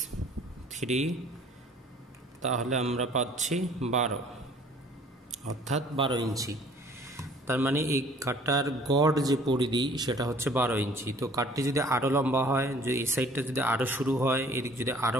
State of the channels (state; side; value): normal; both; correlation 0.54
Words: 3, তাহলে আমরা পাচ্ছি 12, অর্থাৎ 12 ইঞ্চি। তার মানে এই কাঠটার গড় যে পরিধি সেটা হচ্ছে 12 ইঞ্চি। তো কাঠটি যদি আরও লম্বা হয়, যে এই সাইডটা যদি আরও শুরু হয়, এদিক যদি আরও